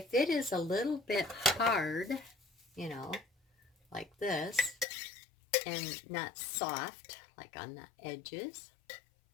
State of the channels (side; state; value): right; drops out; at 4.9 s